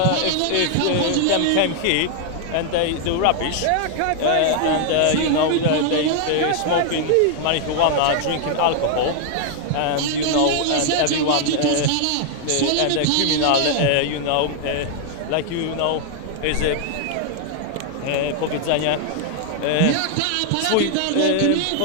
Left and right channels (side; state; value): both; different; correlation 0.00